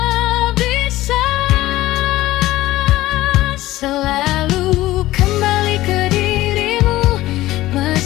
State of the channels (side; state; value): right; quieter; 16.6 dB